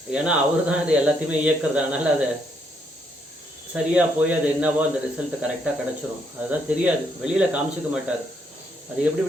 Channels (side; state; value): both; normal; correlation 0.73